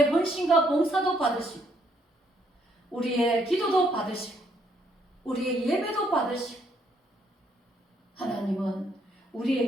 헌신과 봉사도 받으시고 우리의 기도도 받으시고 우리의 예배도 받으시고 하나님은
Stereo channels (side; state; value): both; normal; correlation 0.70